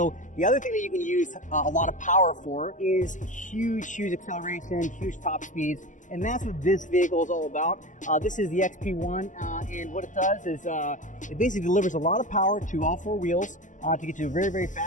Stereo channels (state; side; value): late; right; 0.37 ms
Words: the other thing that you can use a lot of power for is huge acceleration, huge top speeds. And that's what this vehicle is all about. This is the XP-1, and what it does is it basically delivers a lot of power to all four wheels to get you very, very